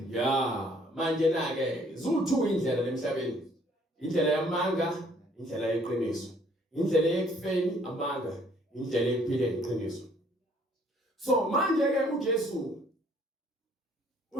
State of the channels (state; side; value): normal; both; correlation 0.61